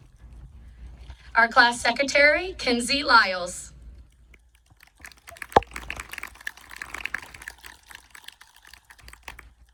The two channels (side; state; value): both; identical; correlation 1.00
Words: Our class secretary, Kinsey Lyles.